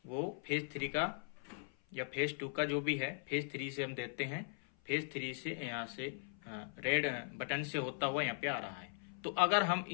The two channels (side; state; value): right; silent; 52 dB below the other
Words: वो फेज 3 का या फेज 2 का जो भी है, फेज 3 से हम देते हैं। फेज 3 से यहां से रेड बटन से होता हुआ यहाँ पे आ रहा है। तो अगर हम